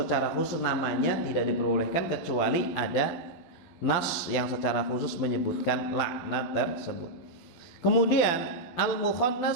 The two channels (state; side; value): late; right; 12 ms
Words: khusus namanya tidak diperbolehkan kecuali ada nas yang secara khusus menyebutkan laknat tersebut. Kemudian